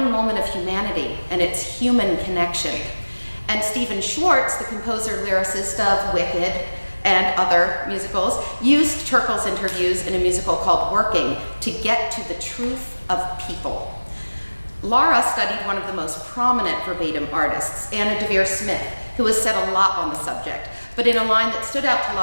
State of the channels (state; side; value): inverted; both; correlation -1.00